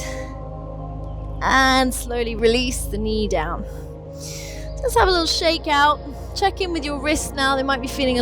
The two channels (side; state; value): both; identical; correlation 1.00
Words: And slowly release the knee down. Just have a little shake out. Check in with your wrists now. They might be feeling